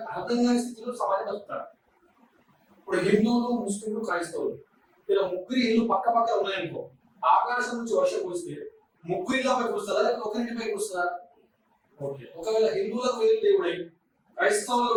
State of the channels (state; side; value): identical; both; correlation 1.00